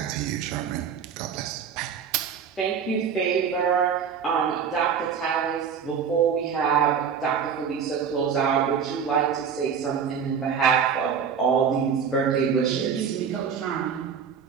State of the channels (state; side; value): quieter; left; 7.0 dB